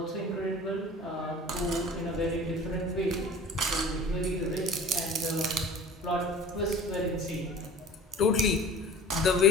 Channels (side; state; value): both; normal; correlation 0.42